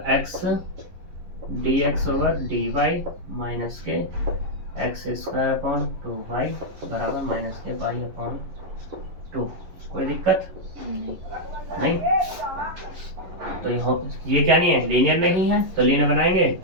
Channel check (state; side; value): late; left; 11 ms